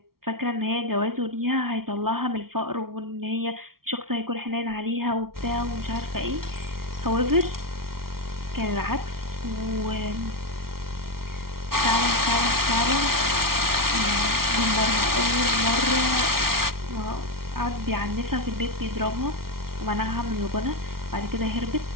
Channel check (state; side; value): late; left; 0.94 ms